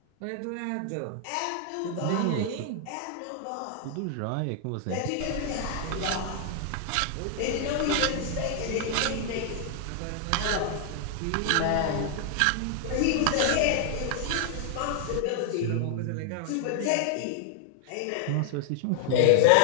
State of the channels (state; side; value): different; both; correlation 0.00